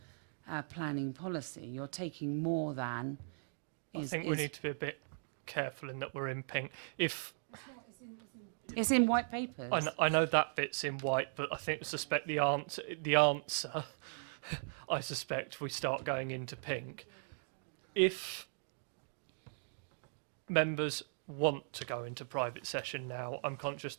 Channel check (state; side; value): silent; left; digital silence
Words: our planning policy. You're taking more than. I think we need to be a bit careful in that we're in pink. If it's in white papers. I know that bit's in white, but I suspect the answer I suspect we start going into pink. If members want to go into private session now, I'm conscious